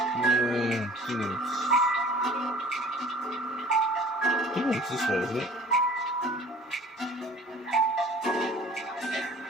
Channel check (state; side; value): normal; both; correlation 0.48